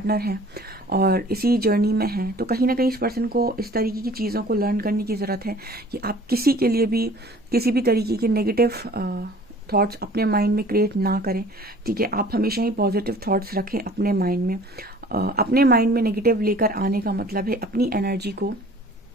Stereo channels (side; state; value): both; normal; correlation 0.49